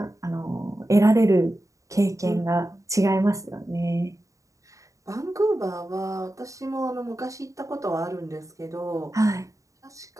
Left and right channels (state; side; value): late; left; 0.16 ms